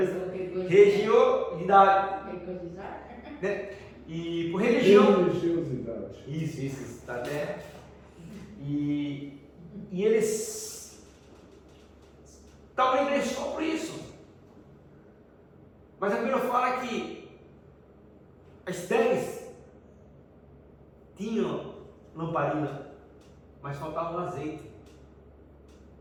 Religiosidade. Né? E por religião. Religiosidade. Isso, está até. E eles estavam na igreja só por isso. Mas a Bíblia fala que as 10 tinham lamparina, mas faltava um azeite.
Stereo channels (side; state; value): both; identical; correlation 1.00